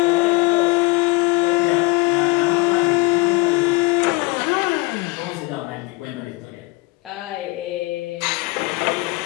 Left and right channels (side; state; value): right; quieter; 23.7 dB